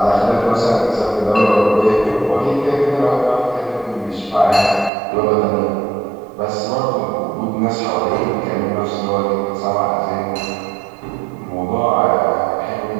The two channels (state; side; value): drops out; left; at 4.9 s